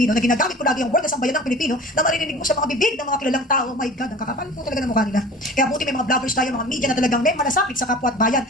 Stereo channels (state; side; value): normal; both; correlation 0.41